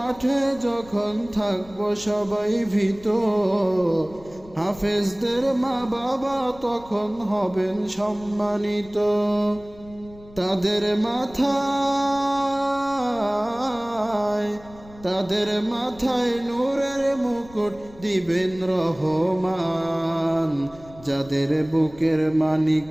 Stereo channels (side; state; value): left; noise; rumble, 21 dB below the sound